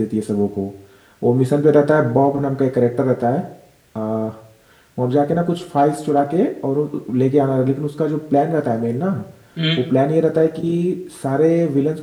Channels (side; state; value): both; identical; correlation 1.00